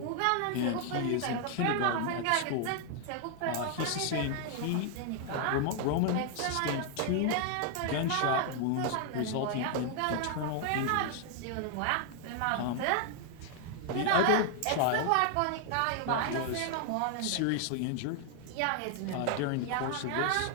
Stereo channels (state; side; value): different; both; correlation 0.00